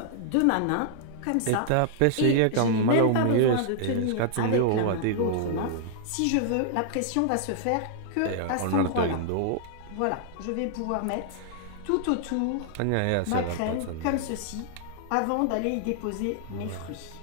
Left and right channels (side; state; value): both; different; correlation -0.01